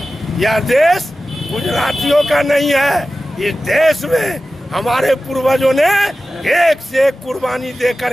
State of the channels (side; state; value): both; normal; correlation 0.95